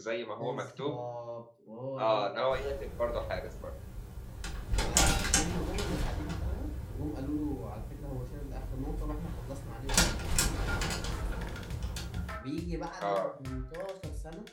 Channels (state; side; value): identical; both; correlation 1.00